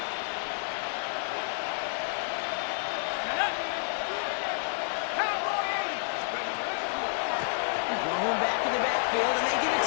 Going back in the backfield, and they give it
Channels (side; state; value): right; silent; digital silence